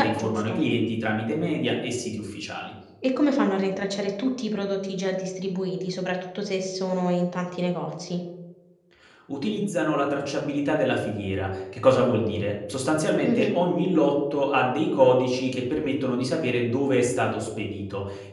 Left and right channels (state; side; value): identical; both; correlation 1.00